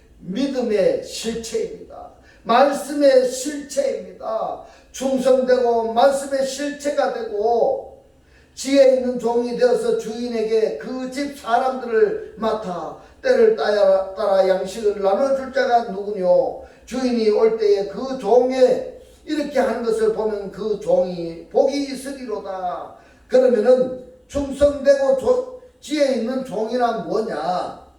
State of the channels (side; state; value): both; identical; correlation 1.00